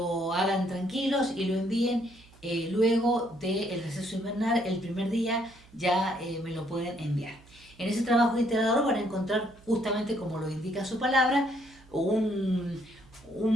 hagan tranquilos y lo envíen luego del receso invernal. El primer día ya me lo pueden enviar. En ese trabajo integrador van a encontrar, justamente como lo indica su palabra,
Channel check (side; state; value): right; noise; hum, 25 dB below the sound